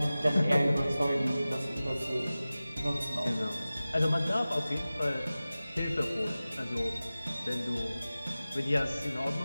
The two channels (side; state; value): both; inverted; correlation -0.97